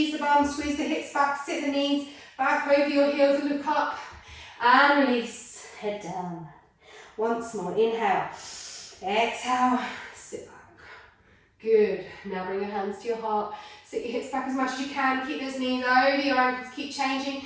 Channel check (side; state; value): both; identical; correlation 1.00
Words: the bum, squeeze the hips back, sit the knees back over your heels and look up and release, head down. Once more, inhale, exhale, sit back. Good, now bring your hands to your heart, sit your hips back as much as you can, keep those knees over your ankles, keep changing,